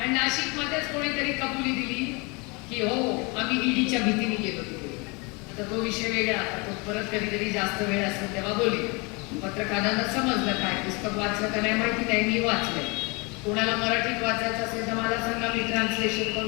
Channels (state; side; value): quieter; right; 29.0 dB